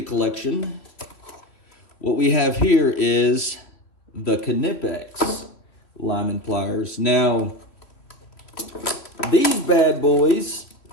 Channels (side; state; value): right; late; 3.2 ms